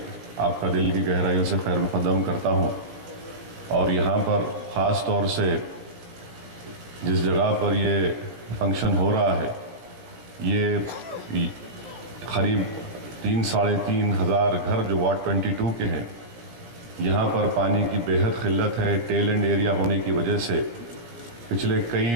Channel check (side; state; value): left; late; 17 ms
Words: आपका दिल की गहराइयों से खैर मुक़द्दम करता हूँ। और यहाँ पर ख़ास तौर से जिस जगह पर ये फंक्शन हो रहा है, ये करीब 3-3.5 हज़ार घर जो वार्ड 22 के हैं, यहाँ पर पानी की बेहद किल्लत है। टेल एंड एरिया होने की वजह से पिछले कई